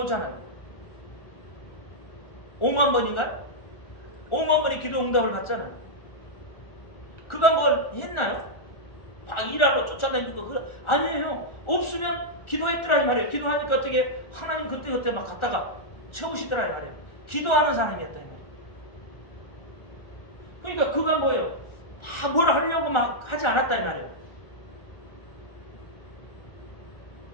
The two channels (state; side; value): late; right; 1.4 ms